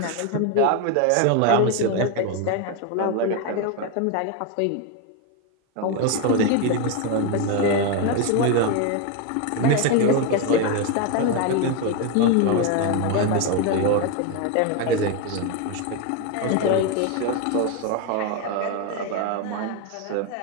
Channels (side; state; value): both; different; correlation 0.02